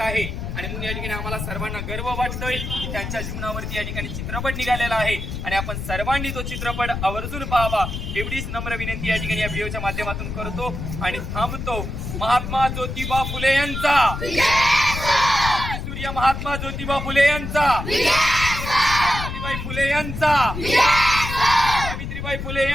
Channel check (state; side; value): noise; left; rumble, 6 dB below the sound